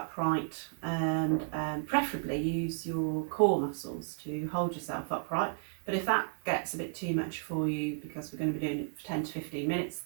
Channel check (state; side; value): silent; left; digital silence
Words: and preferably use your core muscles to hold yourself upright. But if that gets a bit too much for you, because we're going to be doing it for 10 to 15 minutes,